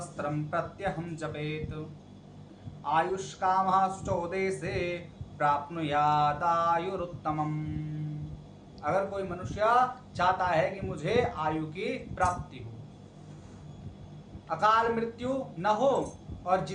प्रत्यहम जपेत आयुष्कामः शुचोदेशे प्राप्नुयादायुरुत्तमम्। अगर कोई मनुष्य चाहता है कि मुझे आयु की प्राप्ति हो, अकाल मृत्यु न हो, और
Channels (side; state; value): both; identical; correlation 1.00